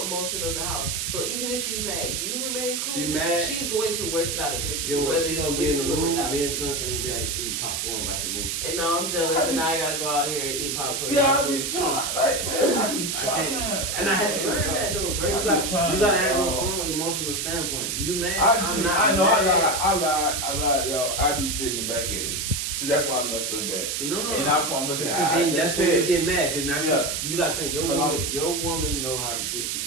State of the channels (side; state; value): right; noise; hiss, 1 dB below the sound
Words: emotion of the house. So even if she's mad, you remain cool. She's going to work it out eventually. She's gonna be in the room. Me and son will be like eating popcorn, watching movies. And now I'm jealous, and now I gotta go out here and eat popcorn. Yeah, I be trying. Like, man, I be trying. And I had to learn that though, bro. You gotta have your own emotional standpoint. You mad? I'm not. I know. I lied, y'all. I be jigging back at it. See, that's why I mess up bad. No. And that's why I'm looking at. That's when you get mad, because you gotta think your woman know how to get